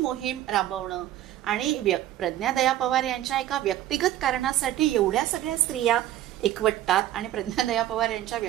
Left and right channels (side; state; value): left; quieter; 13.1 dB